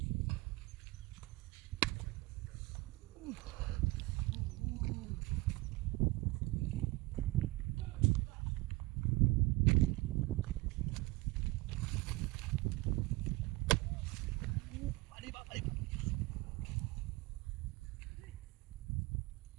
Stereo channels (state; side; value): quieter; left; 21.3 dB